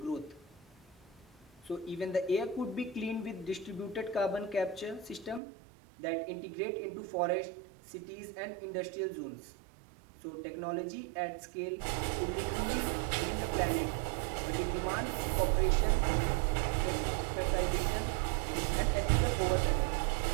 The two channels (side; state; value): left; drops out; at 5.4 s